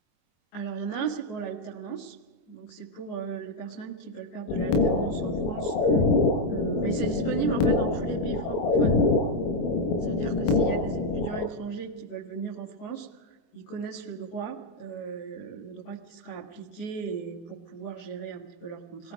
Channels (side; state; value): right; late; 24 ms